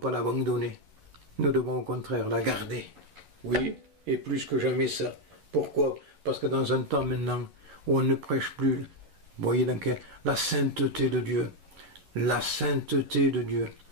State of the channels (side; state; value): left; late; 11 ms